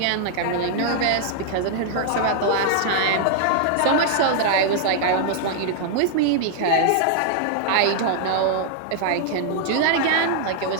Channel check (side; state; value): both; different; correlation -0.01